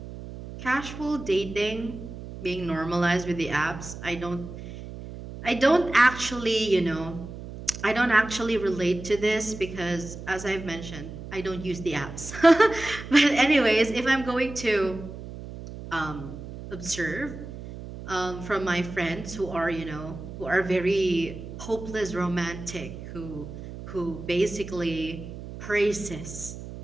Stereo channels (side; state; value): right; noise; hum, 11 dB below the sound